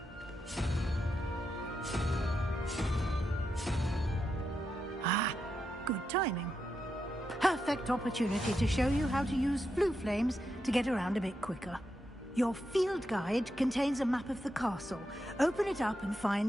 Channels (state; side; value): normal; both; correlation 0.85